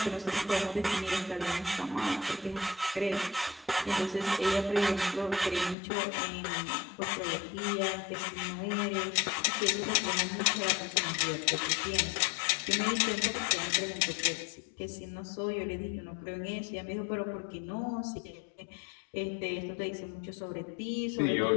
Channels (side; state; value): right; drops out; at 5.8 s